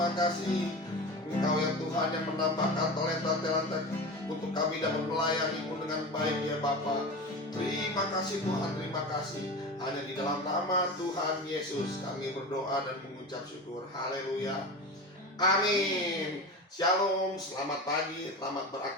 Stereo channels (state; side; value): normal; both; correlation 0.28